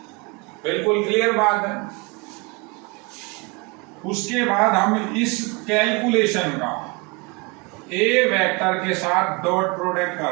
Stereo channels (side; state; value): left; quieter; 28.1 dB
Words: बिल्कुल क्लियर बात है। उसके बाद हम इस कैलकुलेशन का ए वेक्टर के साथ डॉट प्रोडक्ट